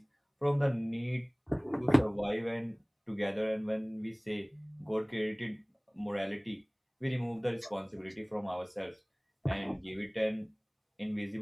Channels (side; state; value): both; identical; correlation 1.00